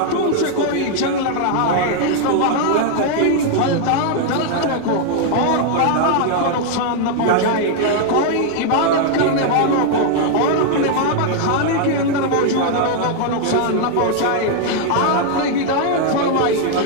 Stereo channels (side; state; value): both; different; correlation 0.00